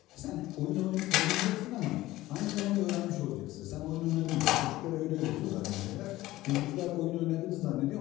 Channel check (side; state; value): right; quieter; 17.0 dB